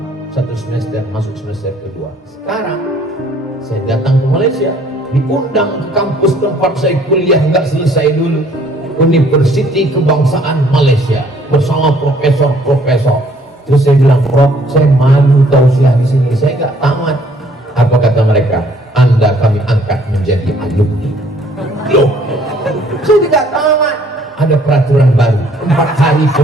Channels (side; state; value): both; normal; correlation 0.61